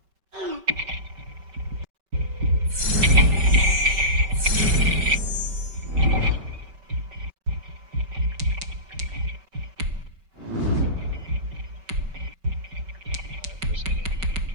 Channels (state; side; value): late; left; 5.2 ms